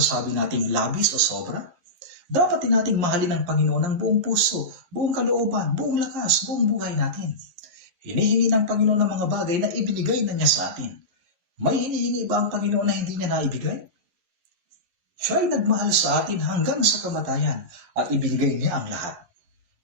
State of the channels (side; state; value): left; late; 11 ms